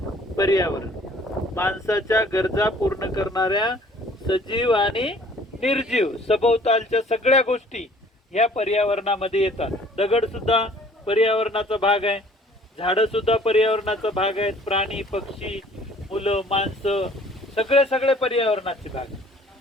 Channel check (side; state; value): both; normal; correlation 0.54